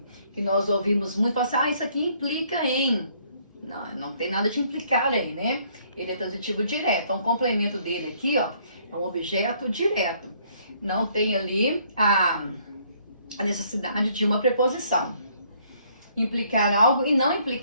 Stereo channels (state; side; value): inverted; both; correlation -0.65